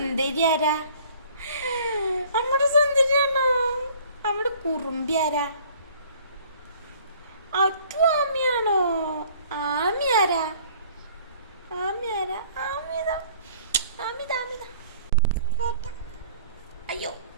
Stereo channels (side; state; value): both; inverted; correlation -0.53